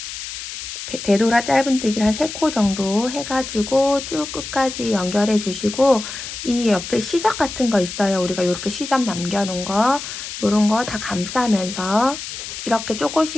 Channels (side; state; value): left; noise; hiss, 9 dB below the sound